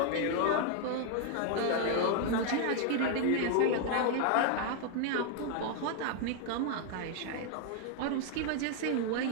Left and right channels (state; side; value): different; both; correlation 0.00